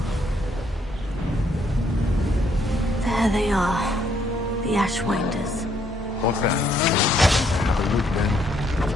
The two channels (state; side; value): normal; both; correlation 0.70